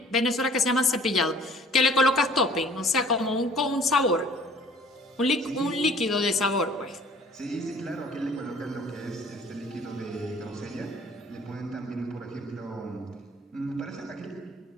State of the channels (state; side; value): normal; both; correlation 0.52